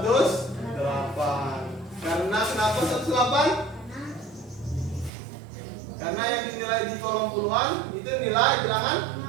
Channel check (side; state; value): left; drops out; at 5.1 s